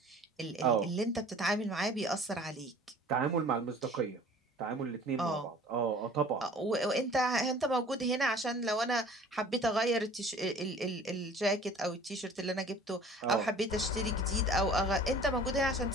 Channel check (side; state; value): both; normal; correlation 0.48